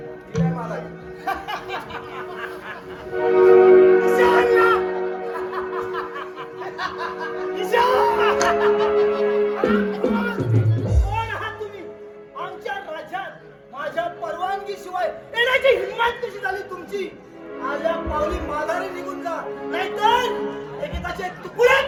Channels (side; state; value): both; identical; correlation 1.00